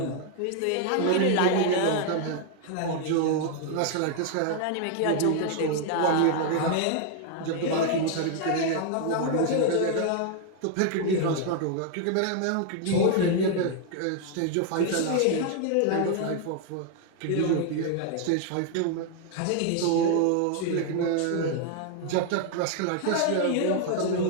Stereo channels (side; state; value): both; different; correlation 0.00